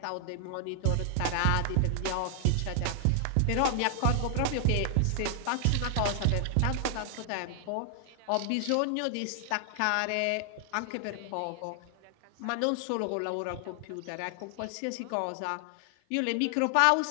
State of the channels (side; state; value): both; different; correlation 0.00